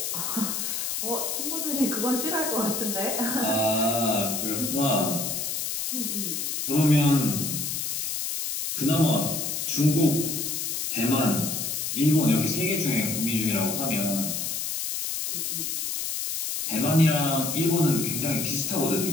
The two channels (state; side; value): noise; left; hiss, 2 dB below the sound